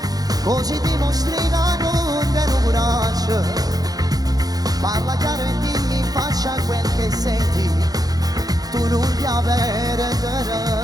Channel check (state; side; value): late; left; 0.18 ms